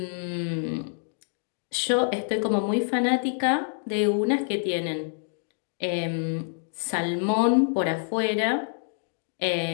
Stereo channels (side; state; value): right; silent; digital silence